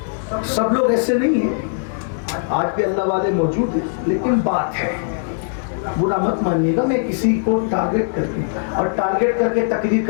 سب لوگ ایسے نہیں ہیں، آج بھی اللہ والے موجود ہیں، لیکن بات ہے برا مت مانیے گا، میں کسی کو ٹارگٹ کرتی ہوں، اور ٹارگٹ کر کے تقریر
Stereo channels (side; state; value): right; silent; digital silence